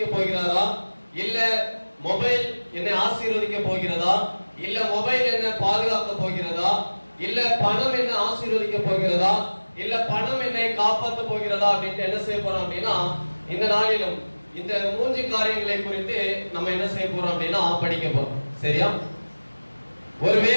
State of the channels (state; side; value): inverted; both; correlation -1.00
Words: போகிறாரா, இல்ல மொபைல் என்னை ஆசீர்வதிக்க போகிறதா, இல்ல மொபைல் என்னை பாதுகாக்க போகிறதா, இல்ல பணம் என்னை ஆசீர்வதிக்க போகிறதா, இல்ல பணம் என்னை காப்பாற்ற போகிறதா அப்படின்ட்டு என்ன செய்ய போறோம் அப்படின்னா, இந்த நாளிலும் இந்த 3 காரியங்களை குறித்து நம்ம என்ன செய்ய போறோம் அப்படின்னா படிக்க போறோம். சரியா?